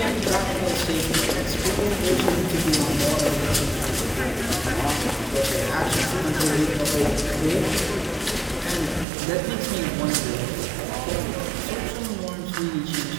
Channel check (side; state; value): left; drops out; at 9.1 s